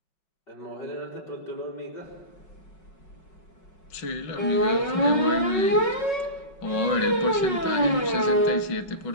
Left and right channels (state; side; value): late; right; 5.4 ms